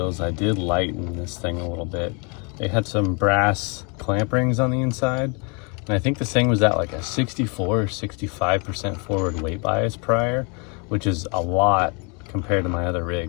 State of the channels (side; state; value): right; quieter; 33.6 dB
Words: I did lighten this thing a little bit. They had some brass clamp rings on the inside, and I think this thing was at like a 64 or 65% forward weight bias prior, which is a lot compared to my other